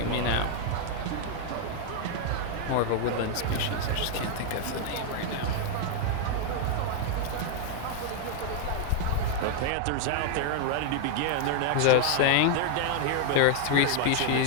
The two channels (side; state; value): both; different; correlation 0.00